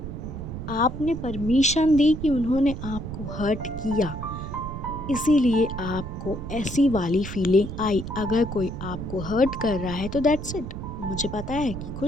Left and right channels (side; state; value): right; noise; rumble, 7 dB below the sound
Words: आपने परमिशन दी कि उन्होंने आपको हर्ट किया, इसीलिए आपको ऐसी वाली फीलिंग आई। अगर कोई आपको हर्ट कर रहा है तो दैट्स इट। मुझे पता है कि